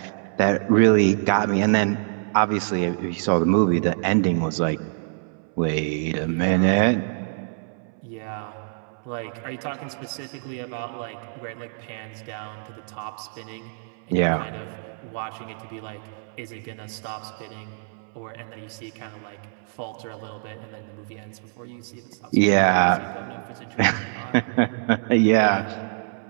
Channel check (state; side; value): silent; left; 62 dB below the other